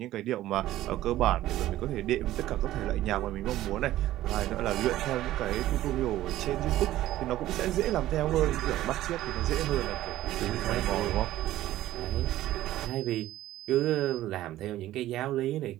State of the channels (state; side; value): quieter; left; 14.5 dB